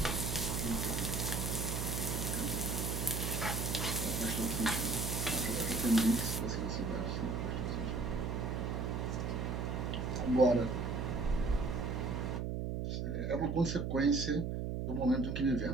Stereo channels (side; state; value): right; noise; hum, 1 dB below the sound